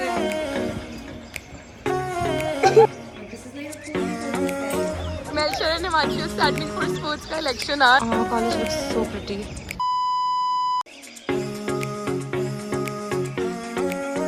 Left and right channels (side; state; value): both; identical; correlation 1.00